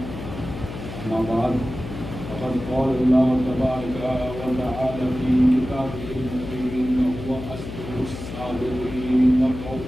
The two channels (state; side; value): noise; left; hum, 9 dB below the sound